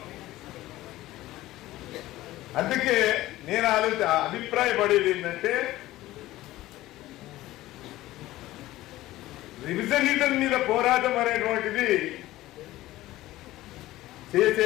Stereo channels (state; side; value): quieter; right; 16.4 dB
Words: అందుకే నేను అభిప్రాయపడేది ఏంటంటే రివిజనిజం మీద పోరాటం అనేటువంటిది